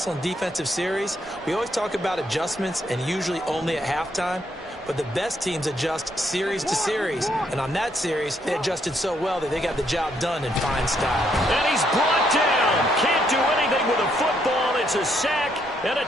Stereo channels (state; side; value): normal; both; correlation 0.73